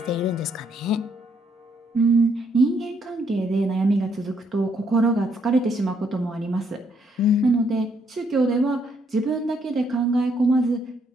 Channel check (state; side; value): normal; both; correlation 0.71